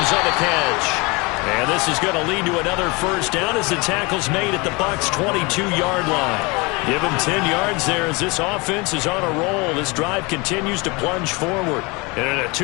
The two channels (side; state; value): right; quieter; 26.7 dB